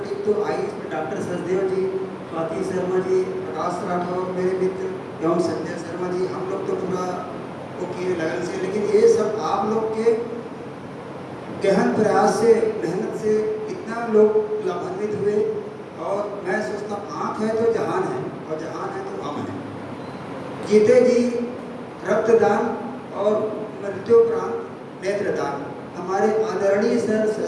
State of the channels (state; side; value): identical; both; correlation 1.00